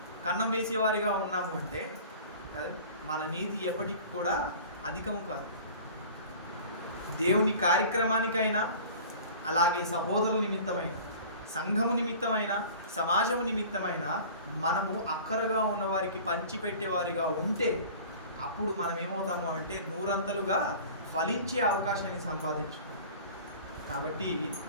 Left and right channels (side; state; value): both; inverted; correlation -0.43